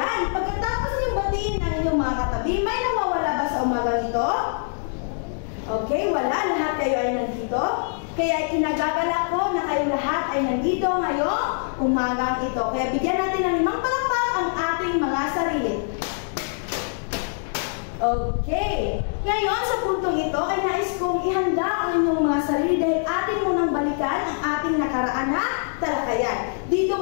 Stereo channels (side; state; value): right; silent; digital silence